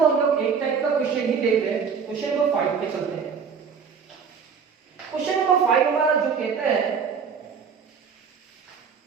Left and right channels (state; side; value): quieter; left; 6.2 dB